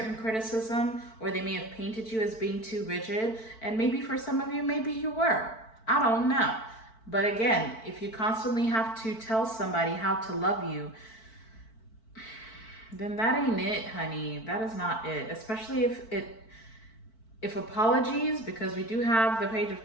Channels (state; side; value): late; right; 4.5 ms